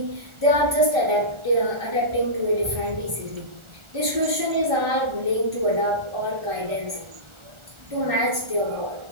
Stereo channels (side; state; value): left; late; 1.4 ms